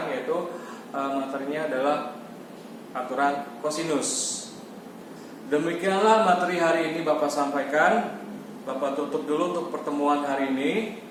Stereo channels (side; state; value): both; identical; correlation 1.00